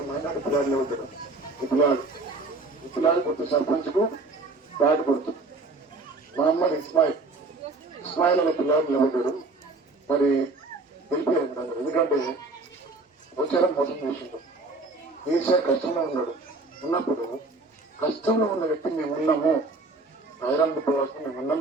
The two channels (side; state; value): left; quieter; 3.3 dB